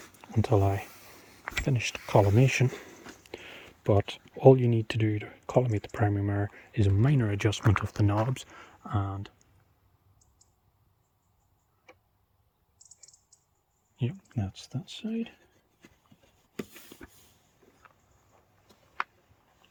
until I finished collimation, but all you need to do to collimate the primary mirror is a minor adjustment of the knobs, and yep, that's that side.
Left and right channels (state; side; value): identical; both; correlation 1.00